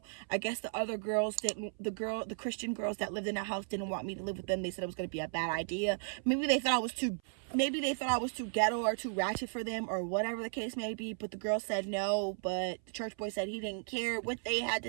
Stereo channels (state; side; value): silent; left; 54 dB below the other